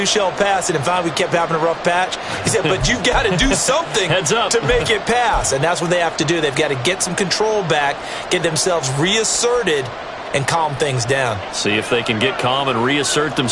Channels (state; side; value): identical; both; correlation 1.00